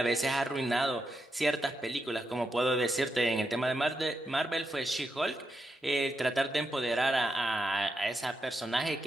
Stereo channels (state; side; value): normal; both; correlation 0.85